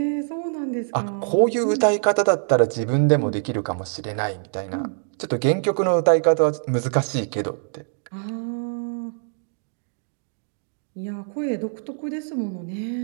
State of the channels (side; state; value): left; silent; digital silence